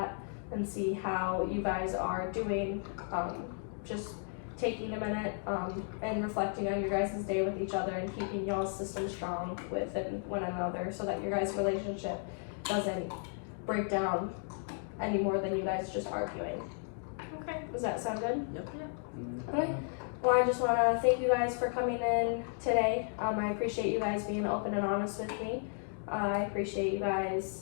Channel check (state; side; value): silent; right; 55 dB below the other